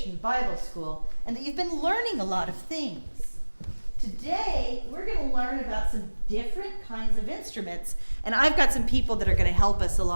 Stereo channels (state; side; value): inverted; both; correlation -1.00